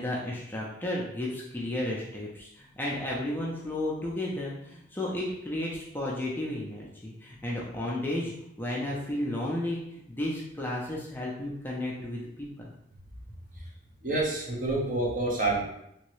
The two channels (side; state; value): both; normal; correlation 0.50